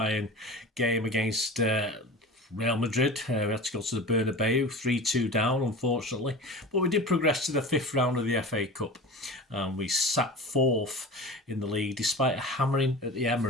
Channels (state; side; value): normal; both; correlation 0.34